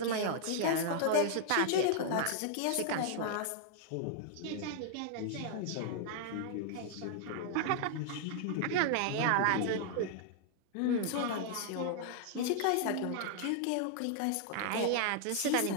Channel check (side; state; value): both; different; correlation 0.00